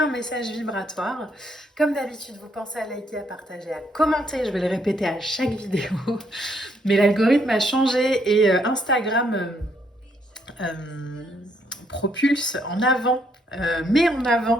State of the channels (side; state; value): both; normal; correlation 0.72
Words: message vibratoire. Comme d'habitude, vous pensez à liker, à partager, à commenter, je vais le répéter à chaque vidéo. Mais l'algorithme a changé et Instagram propulse en avant, met en